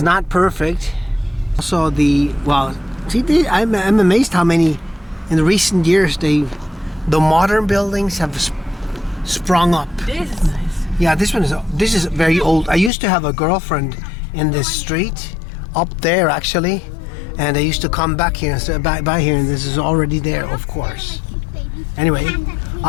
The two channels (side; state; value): right; drops out; at 12.9 s